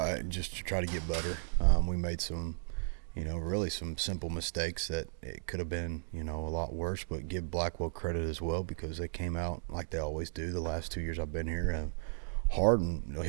Just to try to get better. We made some, really some simple mistakes that it could have been, a lot worse. But give Blackwell credit as well because they came out like they always do. The last 2 years I've been here, hard and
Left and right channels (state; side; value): silent; left; digital silence